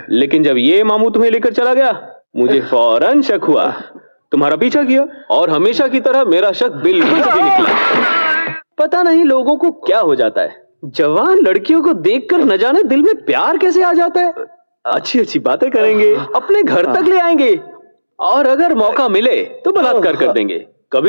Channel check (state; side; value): inverted; both; correlation -1.00